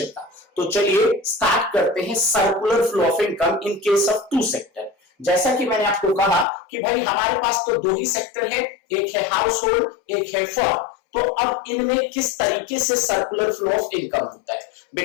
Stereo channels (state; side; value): drops out; right; at 6.5 s